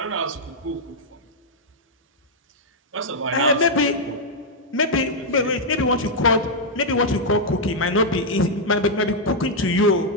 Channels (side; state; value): both; normal; correlation -0.04